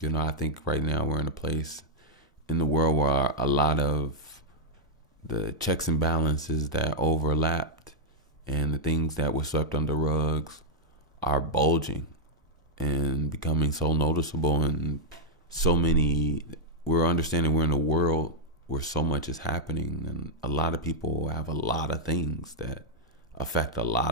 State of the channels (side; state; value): both; normal; correlation -0.05